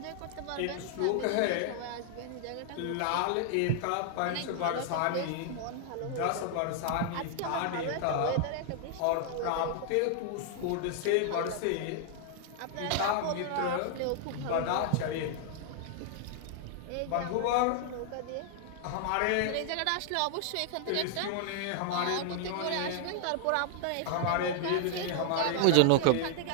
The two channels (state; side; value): different; both; correlation 0.00